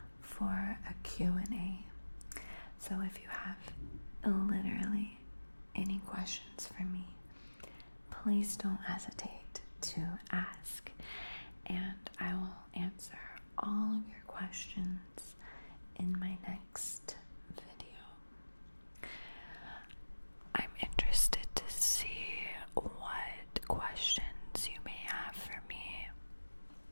for a Q&A. So if you have literally any questions for me, please don't hesitate to ask, and I will answer all of your questions in my next video. I'm interested to see what questions you may have for me,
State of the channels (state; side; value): inverted; both; correlation -1.00